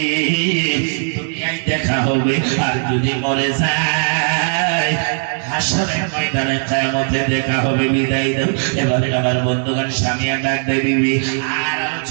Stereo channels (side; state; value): left; silent; 66 dB below the other